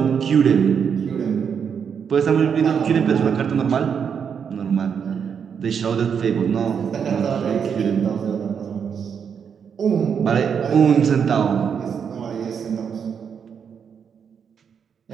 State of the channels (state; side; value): quieter; left; 7.1 dB